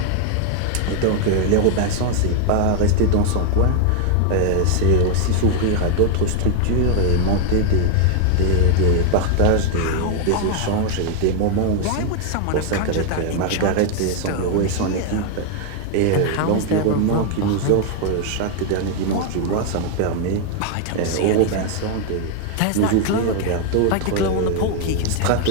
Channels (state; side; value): different; both; correlation 0.00